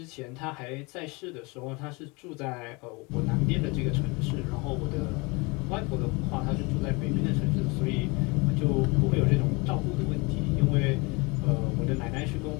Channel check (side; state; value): right; quieter; 27.2 dB